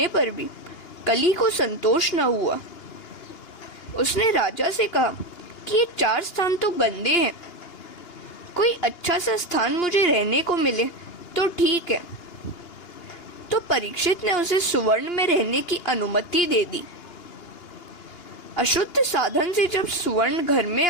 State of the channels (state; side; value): late; right; 2.9 ms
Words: पर भी कली को संतोष न हुआ। उसने राजा से कहा कि ये 4 स्थान तो गंदे हैं, कोई अच्छा सा स्थान मुझे रहने को मिले तो ठीक है। तो परीक्षित ने उसे सुवर्ण में रहने की अनुमति दे दी। अशुद्ध साधन से जब सुवर्ण घर में